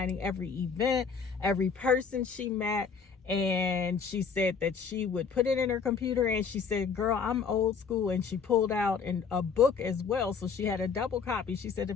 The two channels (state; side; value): quieter; right; 5.8 dB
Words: every event, every person she met. And she said that she would put it in her computer, and she said, girl, I'm old school. And she pulled out a book as well. So she had a double copy. She said,